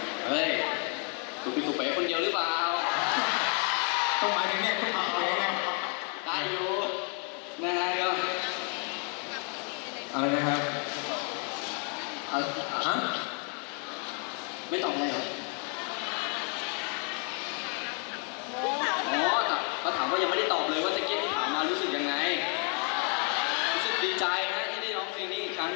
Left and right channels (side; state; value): right; quieter; 39.3 dB